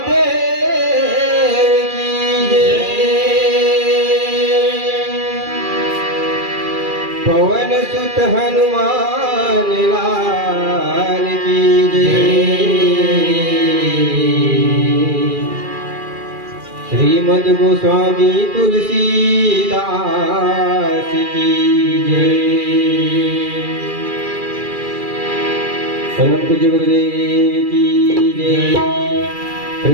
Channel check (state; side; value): late; left; 2.4 ms